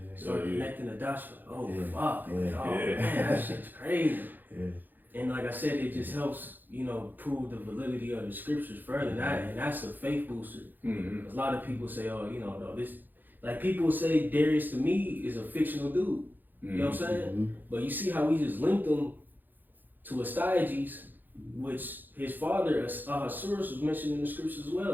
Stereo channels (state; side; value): late; left; 0.088 ms